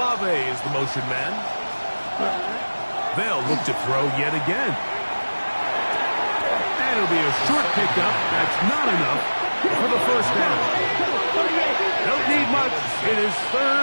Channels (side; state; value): both; inverted; correlation -1.00